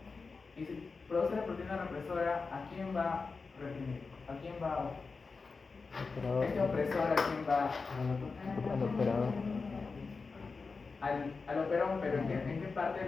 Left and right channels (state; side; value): quieter; right; 4.4 dB